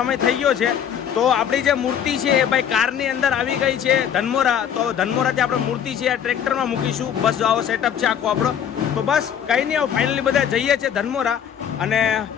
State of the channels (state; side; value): quieter; right; 8.9 dB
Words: થઈ ગયો છે. તો આપણી જે મૂર્તિ છે એ ભાઈ કારની અંદર આવી ગઈ છે ધનમોરા. તો ધનમોરાથી આપણે મૂર્તિ છે આ ટ્રેક્ટરમાં મૂકીશું. બસ આવો સેટઅપ છે આખો આપણો. તો બસ કંઈ નહીં, હવે ફાઇનલી બધા જઈએ છીએ ધનમોરા. અને